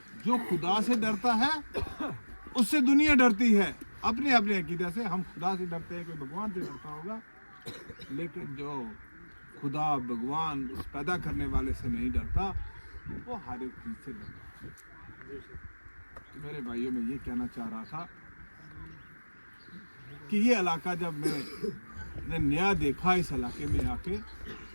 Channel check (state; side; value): inverted; both; correlation -1.00